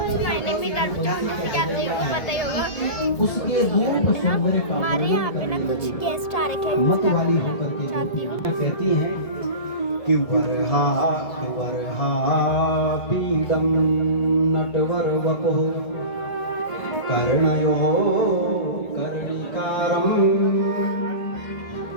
में जैसे कि आप लोगों को पता ही होगा उसके रूप सौंदर्य का हमारे यहाँ पे ना कुछ गेस्ट आ रखे हैं मत जिसका वाली मैं होकर के चाहती हूँ। कहती हैं कि वरहा पीडम नटवर वपुः कर्णयो कर्णिकारं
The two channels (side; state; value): right; late; 1.8 ms